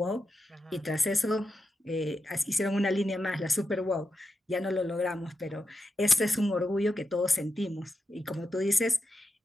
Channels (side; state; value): both; normal; correlation 0.88